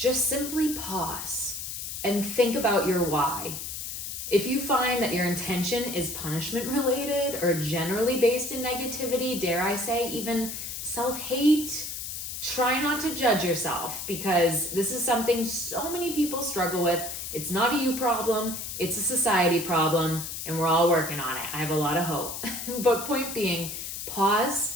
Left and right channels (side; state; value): left; noise; hiss, 6 dB below the sound